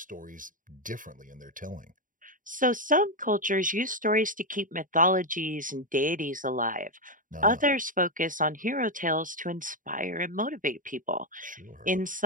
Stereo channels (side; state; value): left; late; 0.39 ms